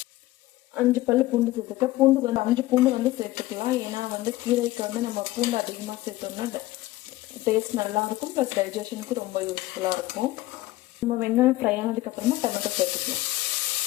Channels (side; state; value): right; quieter; 17.2 dB